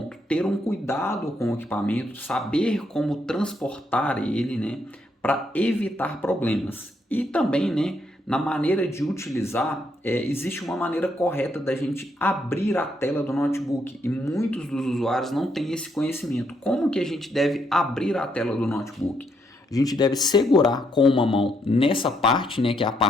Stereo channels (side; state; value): both; normal; correlation 0.75